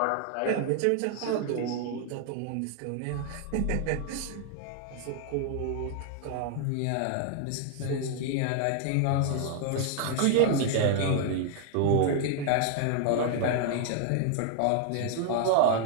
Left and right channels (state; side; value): different; both; correlation 0.00